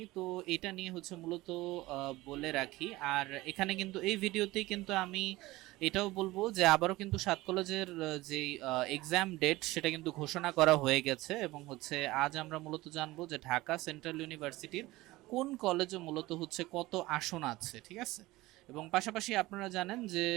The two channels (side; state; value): left; quieter; 19.2 dB